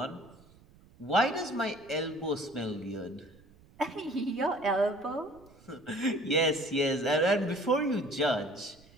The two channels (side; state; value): right; noise; rumble, 26 dB below the sound